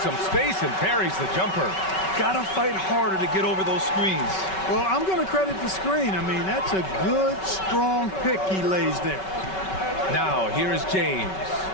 some space and parries the jumper. Gotta fight harder to get over those screens. Well, I'm going to credit the screen. I mean, that's a good, strong pick he lays there. Now, here is James.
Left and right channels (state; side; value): late; right; 5.3 ms